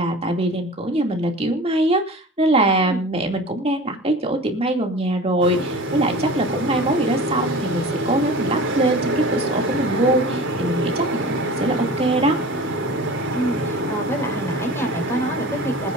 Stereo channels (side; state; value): both; normal; correlation 0.37